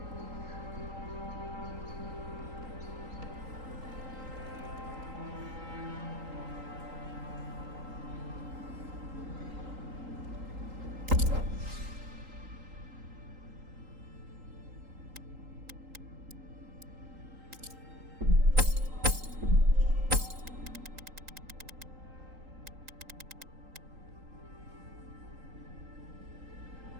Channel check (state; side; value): late; left; 3.8 ms